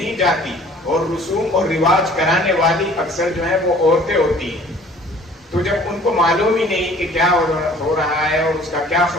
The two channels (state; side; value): normal; both; correlation 0.52